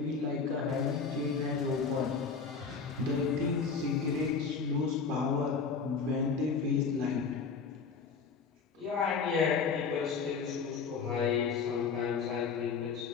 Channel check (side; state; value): right; quieter; 5.4 dB